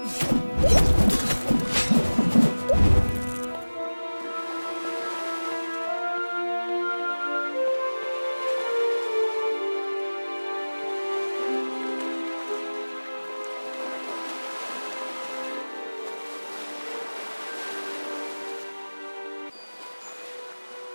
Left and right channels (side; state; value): both; inverted; correlation -1.00